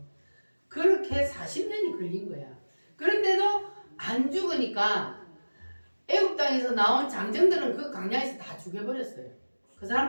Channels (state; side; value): inverted; both; correlation -1.00